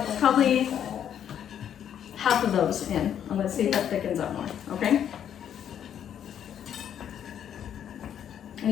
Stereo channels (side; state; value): right; quieter; 9.4 dB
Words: probably half of those in. I'm gonna see if that thickens up more, okay? And